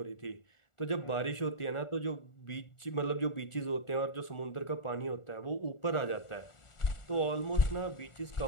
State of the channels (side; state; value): right; late; 1.4 ms